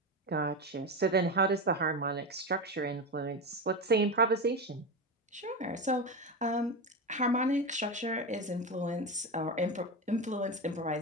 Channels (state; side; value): normal; both; correlation 0.18